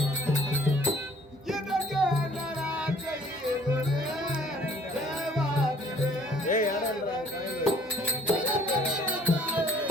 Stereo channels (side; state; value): both; normal; correlation 0.57